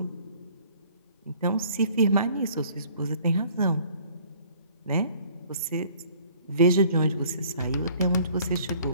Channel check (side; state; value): both; inverted; correlation -0.56